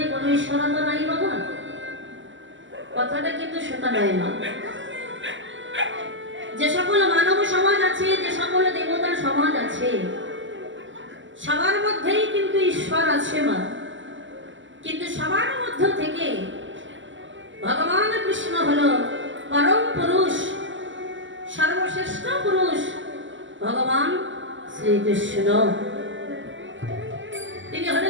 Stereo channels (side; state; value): left; late; 0.55 ms